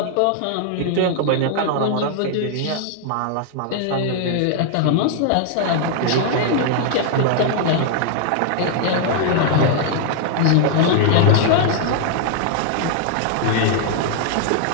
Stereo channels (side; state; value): both; different; correlation 0.00